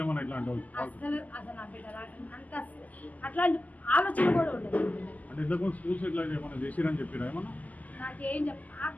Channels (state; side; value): late; right; 0.078 ms